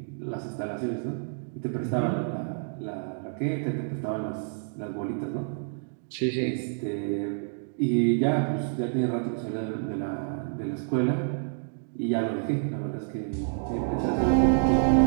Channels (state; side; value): silent; left; digital silence